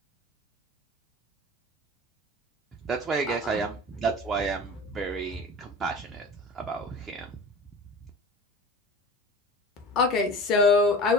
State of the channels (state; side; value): normal; both; correlation 0.37